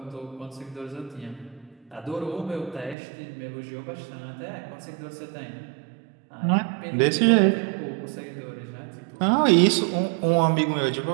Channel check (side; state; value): left; drops out; at 3.0 s